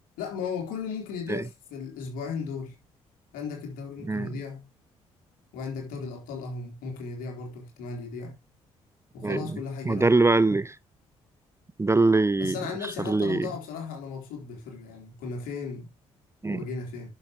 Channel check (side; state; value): both; normal; correlation 0.79